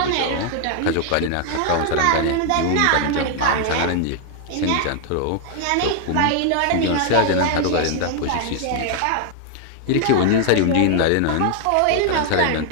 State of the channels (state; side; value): different; both; correlation 0.00